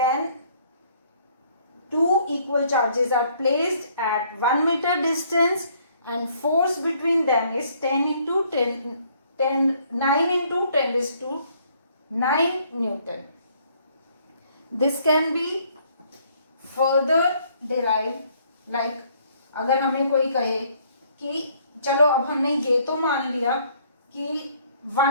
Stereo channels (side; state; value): both; inverted; correlation -0.64